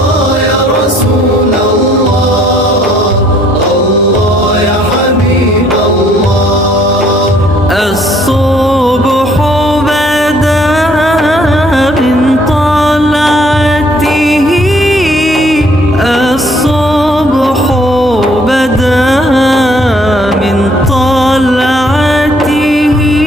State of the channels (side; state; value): both; normal; correlation 0.62